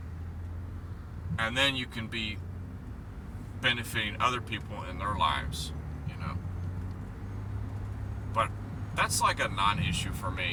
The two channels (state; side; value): identical; both; correlation 1.00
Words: and then you can be benefiting other people in their lives, you know. But that's like a non-issue for